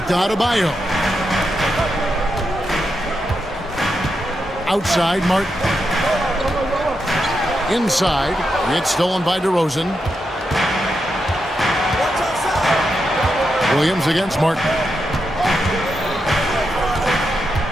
to Adebayo. Outside, Martin. Inside. It's stolen by DeRozan. Williams against Martin.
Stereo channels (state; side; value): normal; both; correlation 0.85